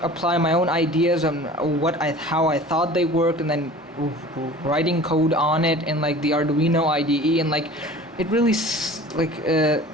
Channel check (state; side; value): normal; both; correlation 0.42